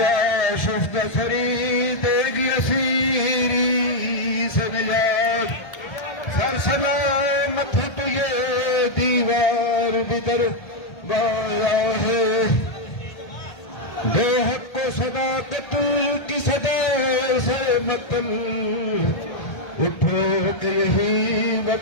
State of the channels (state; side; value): late; right; 1.3 ms